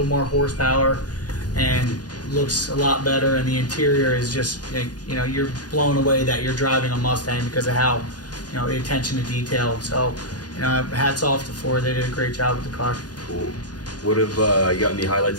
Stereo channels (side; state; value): right; late; 0.69 ms